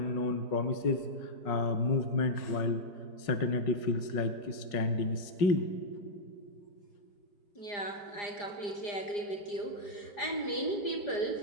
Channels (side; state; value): right; late; 4.9 ms